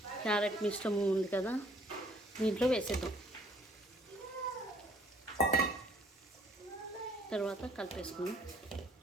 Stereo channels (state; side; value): normal; both; correlation 0.61